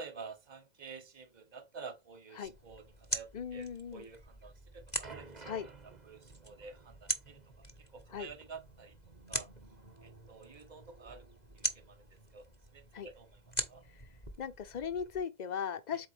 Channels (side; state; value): right; late; 2.0 ms